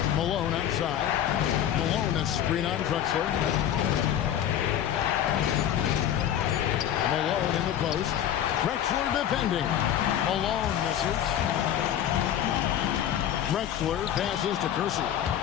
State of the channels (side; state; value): right; quieter; 10.6 dB